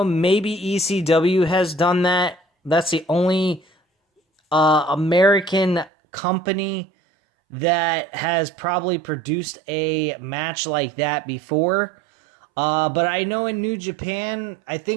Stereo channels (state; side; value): drops out; left; at 5.9 s